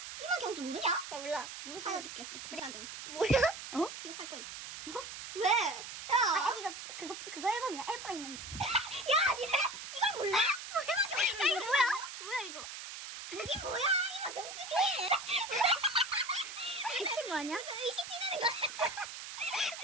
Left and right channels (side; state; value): right; noise; hiss, 10 dB below the sound